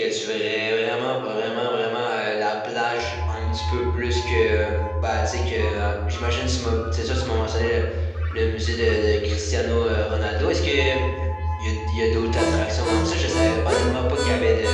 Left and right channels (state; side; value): identical; both; correlation 1.00